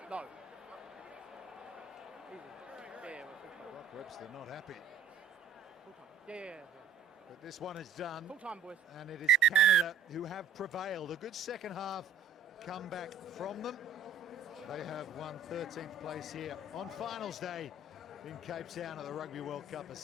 No. Brock Webster not happy. Yeah. But this one is done, Full time, boys. and it is Canada who have prevailed. A good second half comeback from them. They have won 13th place here on finals day in Cape Town at the Rugby World Cup of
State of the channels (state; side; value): quieter; left; 5.6 dB